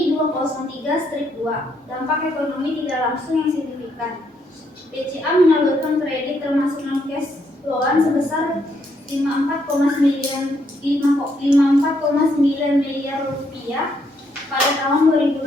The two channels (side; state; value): both; normal; correlation 0.74